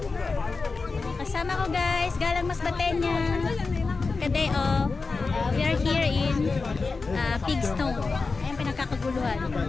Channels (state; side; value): quieter; right; 4.2 dB